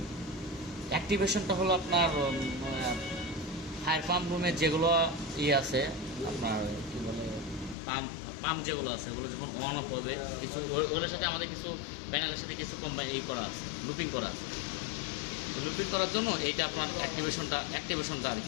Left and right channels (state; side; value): drops out; right; at 7.8 s